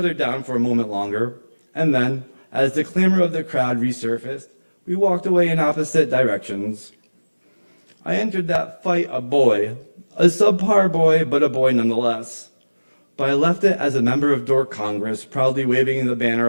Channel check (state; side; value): inverted; both; correlation -1.00